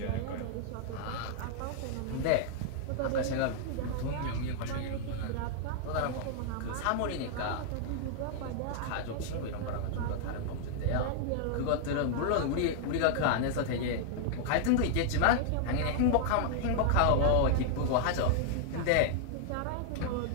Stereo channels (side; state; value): both; different; correlation -0.01